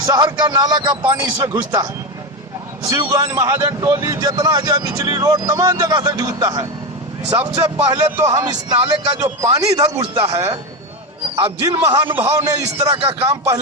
का नाला का पानी इसमें घुसता है। शिवगंज, महाजन टोली, जितना है बिचली रोड, तमाम जगह से घुसता है। सबसे पहले तो हम इस नाले का जो पानी इधर घुसता है, अब जिन महानुभाव ने इस तरह का काम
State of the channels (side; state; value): both; normal; correlation 0.14